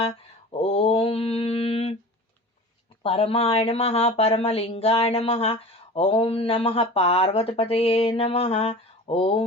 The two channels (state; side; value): normal; both; correlation 0.37